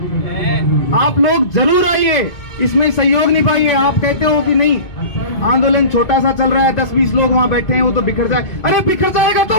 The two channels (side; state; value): right; late; 2.2 ms